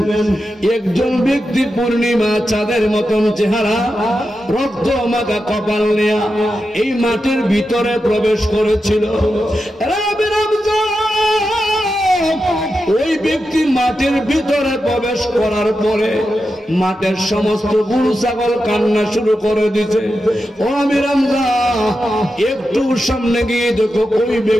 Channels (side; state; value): both; normal; correlation 0.89